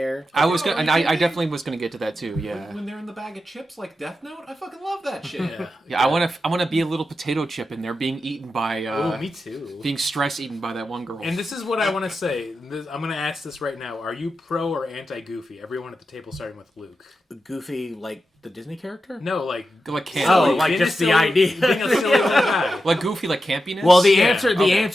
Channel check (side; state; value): both; normal; correlation 0.90